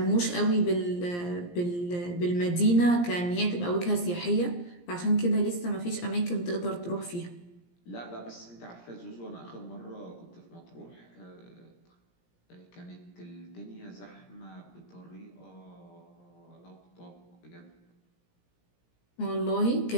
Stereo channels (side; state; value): right; late; 17 ms